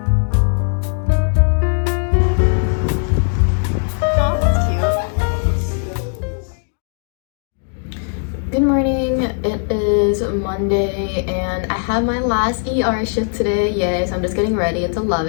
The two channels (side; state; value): right; silent; 59 dB below the other